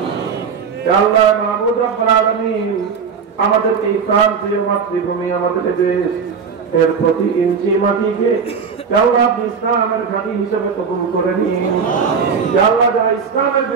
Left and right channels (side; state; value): left; quieter; 6.0 dB